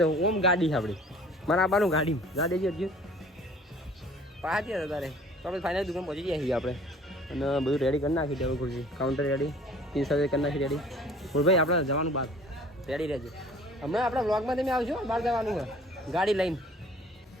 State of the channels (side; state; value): both; normal; correlation 0.50